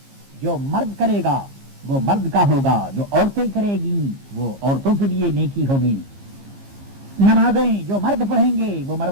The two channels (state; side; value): late; left; 15 ms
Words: جو مرد کرے گا وہ مرد کا ہوگا، جو عورتیں کرے گی وہ عورتوں کے لیے نیکی ہوگی. نمازیں جو مرد پڑھیں گے وہ